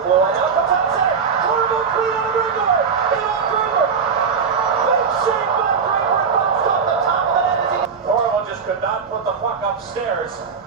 blue line, out the top center. Horrible clean on the breakaway. Draper. Big shake by Draper. Bounced off the top of the net as he... Horrible just could not put the puck upstairs.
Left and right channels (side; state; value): left; quieter; 6.0 dB